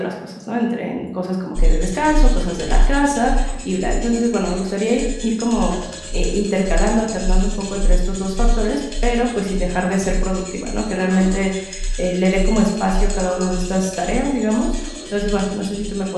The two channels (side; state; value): both; identical; correlation 1.00